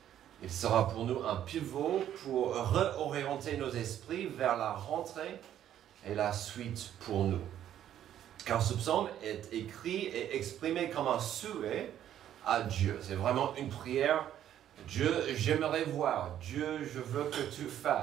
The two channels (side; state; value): left; quieter; 11.0 dB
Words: Il sera pour nous un pivot pour réorienter nos esprits vers la rentrée et la suite pour nous. Car ce psaume est écrit et exprimé comme un souhait à Dieu. C'est vraiment une prière. Dieu, j'aimerais voir. Dieu, je veux que tu